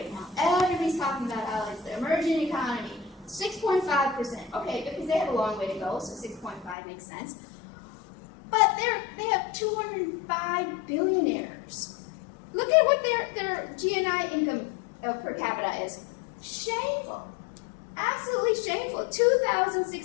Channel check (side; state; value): right; drops out; at 6.8 s